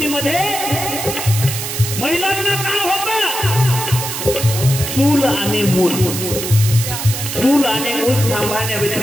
महिलांना काय होतं चूल आणि मूल चूल आणि मूल सांभाळण्या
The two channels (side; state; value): right; noise; hiss, 5 dB below the sound